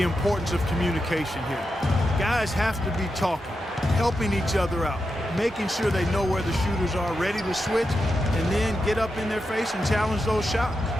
importance of communication here. Guys have to be talking, helping each other out, making sure they know where the shooters are, ready to switch, and then get up in their face and challenge those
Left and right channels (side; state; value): both; normal; correlation 0.88